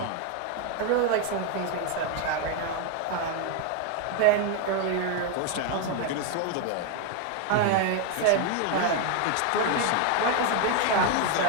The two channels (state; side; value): different; both; correlation 0.01